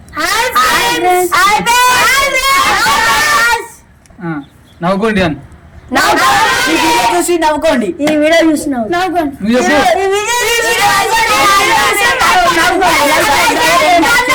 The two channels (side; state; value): both; identical; correlation 1.00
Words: నవ్వుకోండి అని చూసి నవ్వుకోండి. ఈ వీడియో చూసి నవ్వుకోండి.